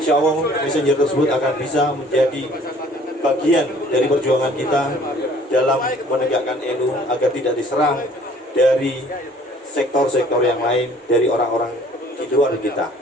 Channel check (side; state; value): both; normal; correlation 0.55